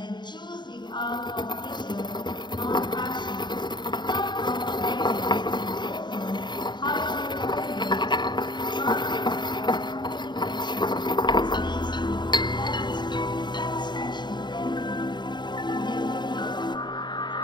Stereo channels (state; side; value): late; right; 0.22 ms